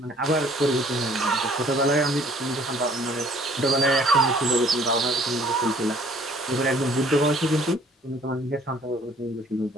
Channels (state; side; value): normal; both; correlation 0.57